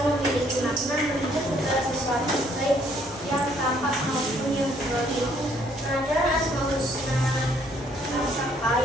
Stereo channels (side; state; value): both; normal; correlation 0.65